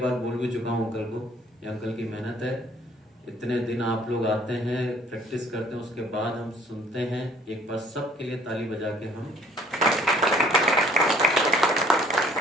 बोल भी चुका हूं अंकल को, ये अंकल की मेहनत है। इतने दिन आप लोग आते हैं, प्रैक्टिस करते हैं, उसके बाद हम सुनते हैं। एक बार सबके लिए ताली बजा के हम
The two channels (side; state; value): both; normal; correlation 0.58